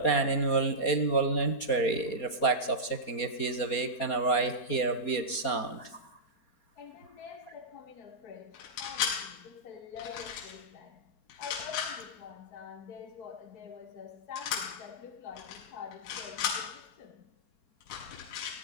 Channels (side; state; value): right; late; 4.2 ms